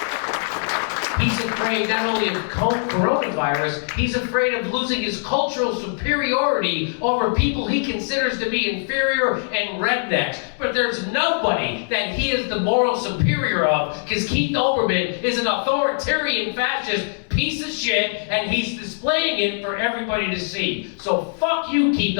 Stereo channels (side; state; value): right; silent; 64 dB below the other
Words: He's afraid not only of coronavirus, he's afraid of losing his cultural superiority over people he considers to be inferior and rednecks. But there's nobody that he is the moral superior of, because Keith Olbermann is an authoritarian fascist piece of shit, and he's displaying it for everybody to see. So fuck you, Keith